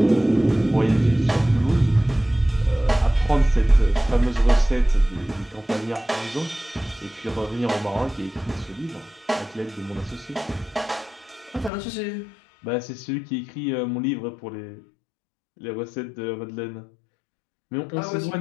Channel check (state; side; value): drops out; right; at 11.7 s